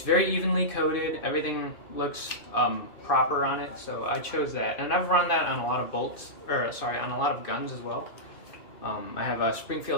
very evenly coated. Everything looks proper on it, so I chose that. And I've run that on a lot of on a lot of guns as well. I have a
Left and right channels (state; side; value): late; right; 2.5 ms